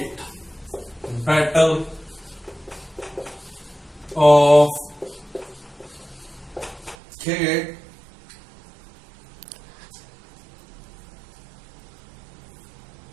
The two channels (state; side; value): drops out; left; at 7.0 s